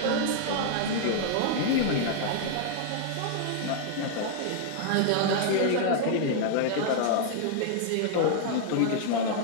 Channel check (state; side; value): different; both; correlation -0.01